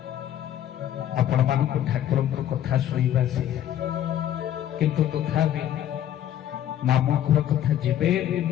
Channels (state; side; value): quieter; right; 11.3 dB